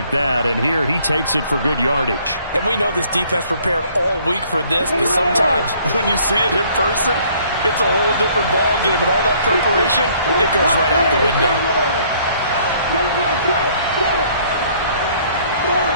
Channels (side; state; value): both; inverted; correlation -0.60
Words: that, and here he takes it for good yardage. And we know this defense prepared all week for this, but sometimes when you see it in person, it's a whole different ball game, and all that preparation, it goes right out the window.